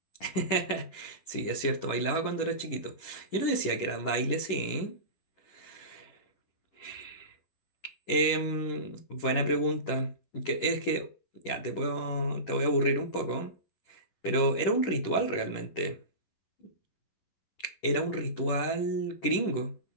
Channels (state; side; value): late; right; 10 ms